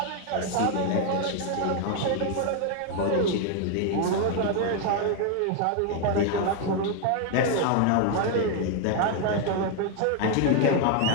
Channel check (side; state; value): both; different; correlation 0.01